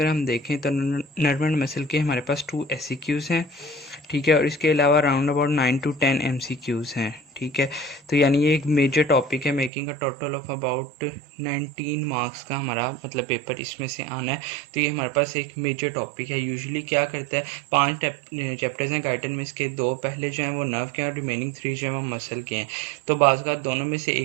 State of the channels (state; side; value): drops out; left; at 9.7 s